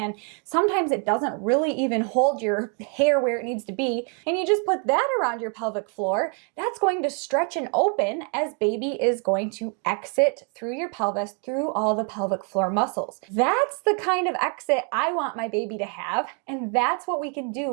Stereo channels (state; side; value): quieter; left; 39.1 dB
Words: sometimes it doesn't really even hold your hair where it needs to be, and you just put that around your pelvic floor, that's going to stretch and open as baby is going to exit through your pelvis, through all the pelvic floor muscles. That's the kind of exit I want my baby to have, and that's what we can do